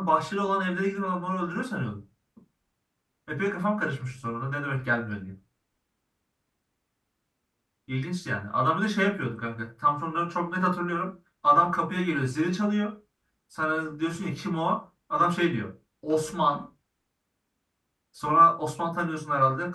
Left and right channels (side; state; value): both; identical; correlation 1.00